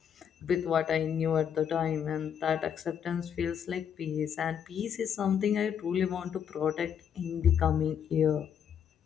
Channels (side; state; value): right; quieter; 8.3 dB